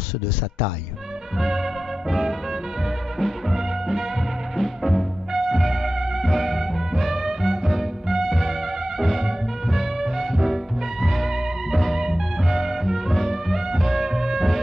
de sa taille.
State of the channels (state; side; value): normal; both; correlation 0.94